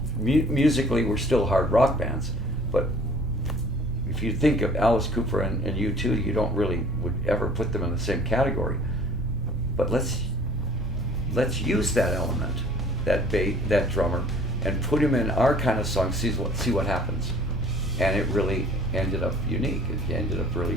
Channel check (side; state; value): both; normal; correlation 0.51